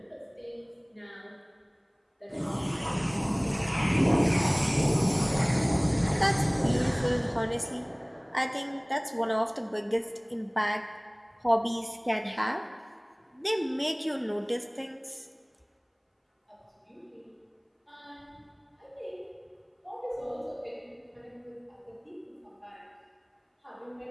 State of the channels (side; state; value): both; identical; correlation 1.00